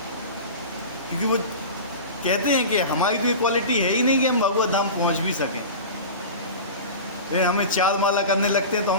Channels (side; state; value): both; inverted; correlation -0.31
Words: क्योंकि वो कहते हैं कि हमारी तो ये क्वालिटी है ही नहीं कि हम भगवत धाम पहुँच भी सकें। लेकिन हमें 4 माला करने लगते हैं तो